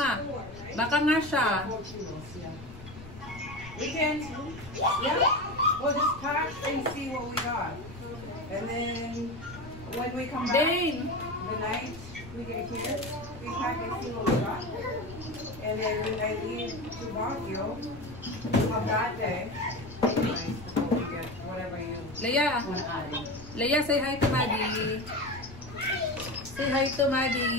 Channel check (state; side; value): noise; left; rumble, 15 dB below the sound